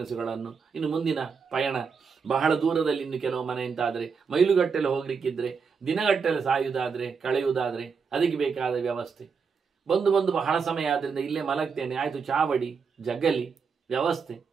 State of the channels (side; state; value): left; quieter; 5.6 dB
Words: ಇನ್ನು ಮುಂದಿನ ಪಯಣ ಬಹಳ ದೂರದಲ್ಲಿ, ಇನ್ನು ಕೆಲವು ಮನೆ ಅಂತಾದರೆ ಮೈಲುಗಟ್ಟಲೆ ಹೋಗ್ಲಿಕ್ಕಿದ್ರೆ, ದಿನಗಟ್ಟಲೆ ಸಾಯುವುದಾದರೆ, ಕಳೆಯುವುದಾದರೆ ಅದಕ್ಕೆ ಬೇಕಾದ ವ್ಯವಸ್ಥೆ. ಬಂದು ಬಹಳ ಸಮಯ ಆದ್ದರಿಂದ ಇಲ್ಲೇ ಮಲಗ್ತೇನೆ, ಆಯಿತು, ಚಾವಡಿ ಜಗ್ಗಲಿ ವ್ಯವಸ್ಥೆ,